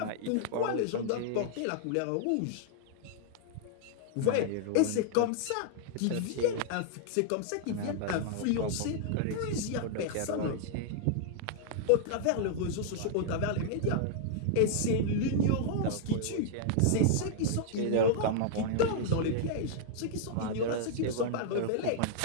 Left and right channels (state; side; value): different; both; correlation -0.01